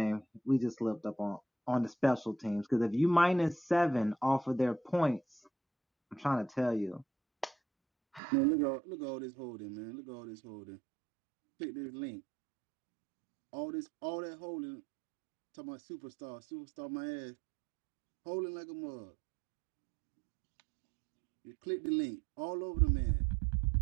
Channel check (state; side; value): drops out; left; at 8.2 s